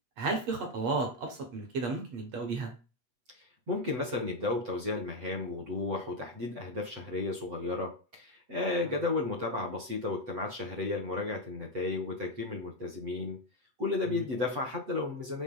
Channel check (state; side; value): late; left; 8.0 ms